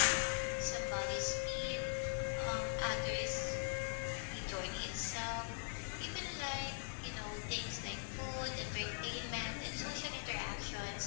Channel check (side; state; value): right; silent; digital silence